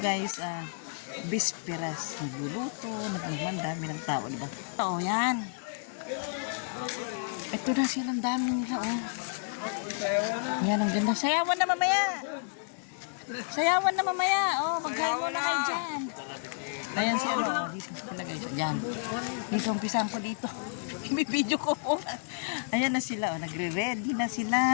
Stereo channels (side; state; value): right; silent; 56 dB below the other